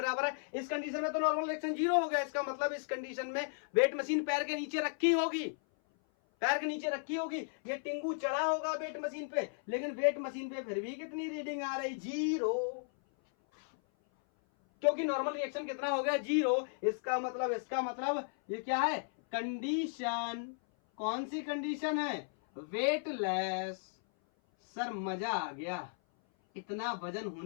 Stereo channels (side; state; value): right; silent; 54 dB below the other